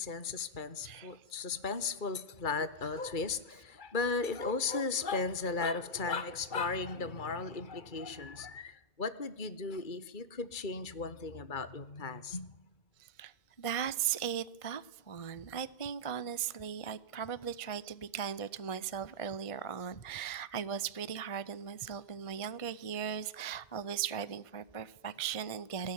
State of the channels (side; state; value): right; late; 1.6 ms